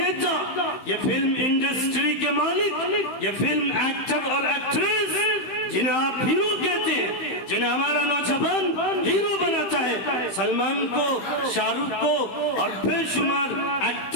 یہ فلم انڈسٹری کے مالک, یہ فلم ایکٹر اور ایکٹریس جنہیں آپ ہیرو کہتے ہیں, جنہیں ہمارا نوجوان ہیرو بناتا ہے, سلمان کو, شاہ رخ کو اور بے شمار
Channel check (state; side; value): late; right; 15 ms